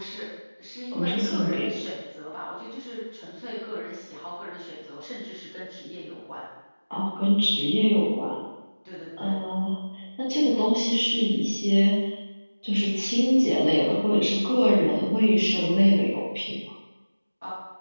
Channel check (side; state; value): both; inverted; correlation -1.00